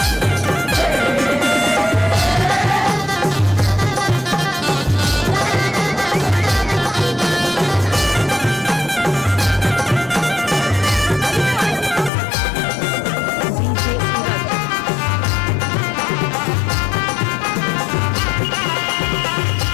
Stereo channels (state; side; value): drops out; right; at 12.1 s